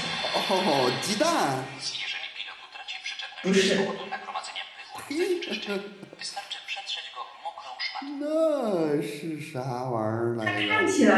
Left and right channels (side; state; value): both; identical; correlation 1.00